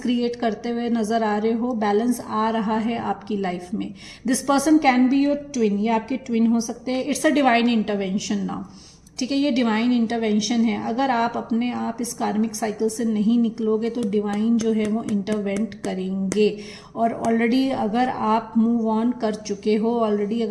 क्रिएट करते हुए नजर आ रहे हो, बैलेंस आ रहा है आपकी लाइफ में। This person can be your twin, ये आपके ट्विन हो सकते हैं। It's a divine intervention now, ठीक है, ये डिवाइन इंटरवेंशन है। अगर आप अपने आप इस कार्मिक साइकिल से नहीं निकलोगे तो डिवाइन जो है वो इंटरवेंट करेंगे। और ऑलरेडी अगर आप मूव ऑन कर चुके हो, ऑलरेडी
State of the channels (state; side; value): identical; both; correlation 1.00